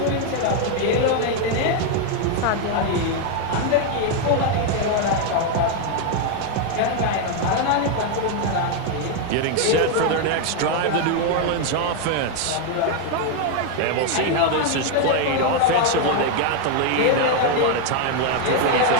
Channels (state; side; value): different; both; correlation 0.01